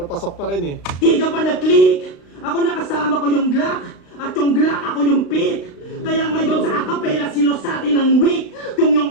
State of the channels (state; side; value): late; right; 35 ms